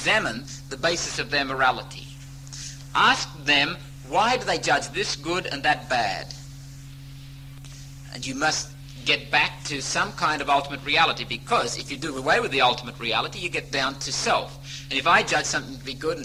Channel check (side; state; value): both; identical; correlation 1.00